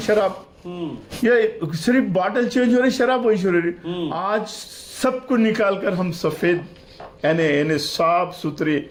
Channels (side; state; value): both; identical; correlation 1.00